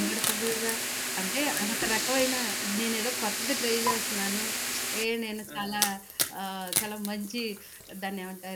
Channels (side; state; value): both; identical; correlation 1.00